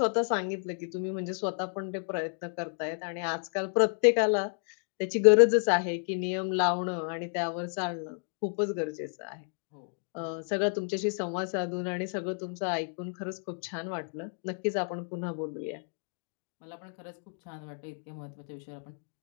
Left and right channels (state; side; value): silent; right; 57 dB below the other